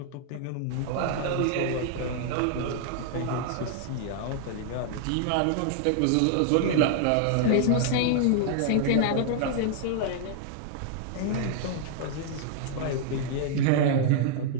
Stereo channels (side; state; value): both; different; correlation -0.01